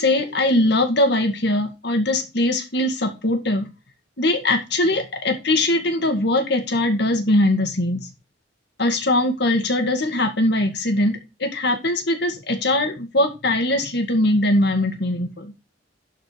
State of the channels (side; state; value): both; normal; correlation 0.34